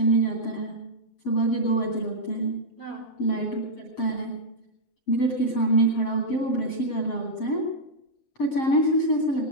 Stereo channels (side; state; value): right; late; 7.6 ms